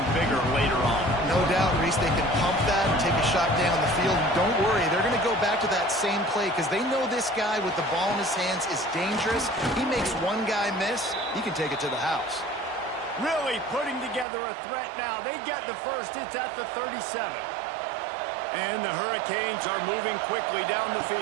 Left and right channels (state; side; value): drops out; left; at 14.2 s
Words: bigger later on. No doubt, Reese, they can pump that and take a shot down the field. And don't worry, they're going to go back to that same play because they know this guy with the ball in his hands is dangerous. He makes one guy miss, he can take it to the house. Really putting together a threat now. They get the first. It's at the 37. And the Hurricanes are moving quickly down the